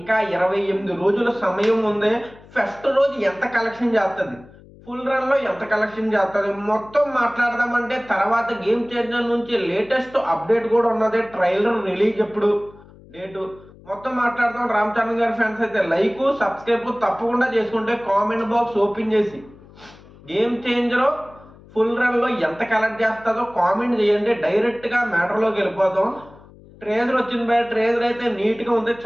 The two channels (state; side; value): noise; left; hum, 23 dB below the sound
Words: 28 రోజుల సమయం ఉంది. ఫస్ట్ రోజు ఎంత కలెక్షన్ చేస్తుంది, ఫుల్ రన్ లో ఎంత కలెక్షన్ చేస్తుంది మొత్తం మాట్లాడదామంటే తర్వాత గేమ్ చేంజర్ నుంచి లేటెస్ట్ అప్డేట్ కూడా ఉన్నది. ట్రైలర్ రిలీజ్ ఎప్పుడు, డేటు మొత్తం మాట్లాడదాం. రామ్ చరణ్ గారి ఫ్యాన్స్ అయితే లైక్ సబ్స్క్రైబ్ తప్పకుండా చేసుకుంటే కామెంట్ బాక్స్ ఓపెన్ చేసి గేమ్ చేంజర్ ఫుల్ రన్ లో ఎంత కలెక్ట్ చేస్తుందో కామెంట్ చేయండి. డైరెక్ట్ గా మ్యాటర్ లోకి వెళ్ళిపోదాం. ట్రేజర్ వచ్చింది బయట. ట్రేజర్ అయితే నీట్ గా ఉంది,